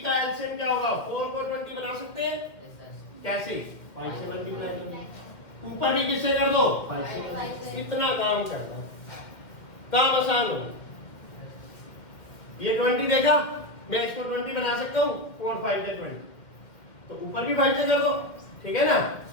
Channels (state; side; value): late; right; 2.1 ms